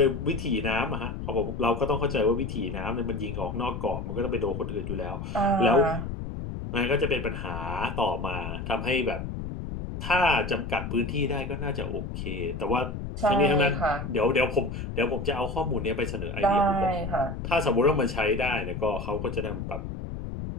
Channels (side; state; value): left; noise; rumble, 6 dB below the sound